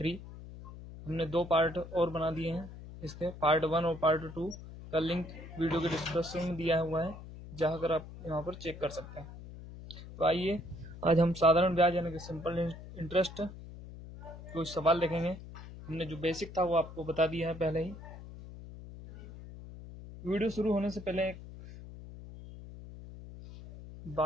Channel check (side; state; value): left; noise; hum, 14 dB below the sound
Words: हमने 2 पार्ट और बना दिए हैं। इसके पार्ट 1 और पार्ट 2 का लिंक वीडियो के डिस्क्रिप्शन में दिया हुआ है, जहां कर आप यहाँ पर चेक कर सकते हैं। तो आइए आज हम साधारण ब्याज यानी कि सिंपल इंटरेस्ट कुछ सवाल देखेंगे। हमने जो बेसिक था वो आपको बता दिया है पहले ही। वीडियो शुरू होने से पहले एक